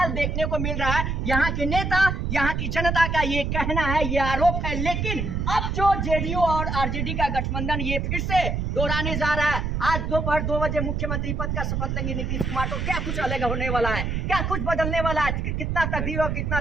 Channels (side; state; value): right; noise; rumble, 1 dB below the sound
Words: देखने को मिल रहा है। यहाँ के नेता, यहाँ की जनता का ये कहना है, ये आरोप है। लेकिन अब जो जेडीयू और आरजेडी का गठबंधन ये फिर से दोहराने जा रहा है। आज दोपहर 2 बजे मुख्यमंत्री पद का शपथ लेंगे नीतीश कुमार, तो क्या कुछ अलग होने वाला है? क्या कुछ बदलने वाला है? कितना तकदीर और कितना